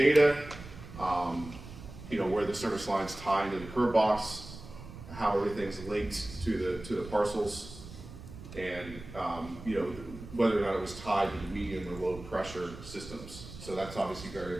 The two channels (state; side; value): noise; right; rumble, 14 dB below the sound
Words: where the service lines tie into the curb box, how everything's linked to the parcels, and whether or not it was tied to the medium or low pressure systems. So that's obviously very